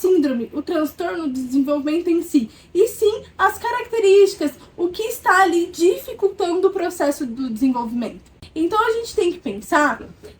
o transtorno do desenvolvimento em si, e sim as características, o que está ali dificultando o processo do desenvolvimento. Então a gente tem que pensar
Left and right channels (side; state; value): both; identical; correlation 1.00